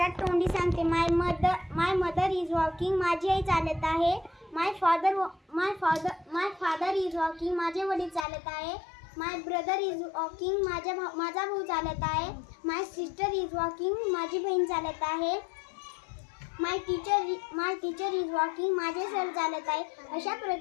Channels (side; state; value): right; drops out; at 8.2 s